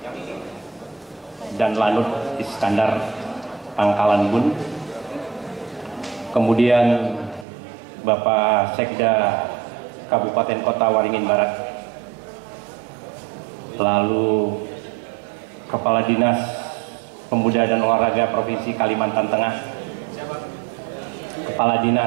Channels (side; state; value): left; drops out; at 7.5 s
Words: dan Lanut Iskandar Pangkalan Bun, kemudian Bapak Sekda Kabupaten Kota Waringin Barat, lalu Kepala Dinas Pemuda dan Olahraga Provinsi Kalimantan Tengah, Kepala